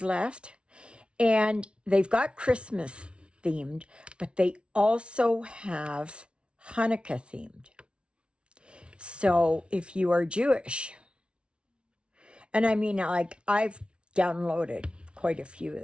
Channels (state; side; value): late; left; 0.058 ms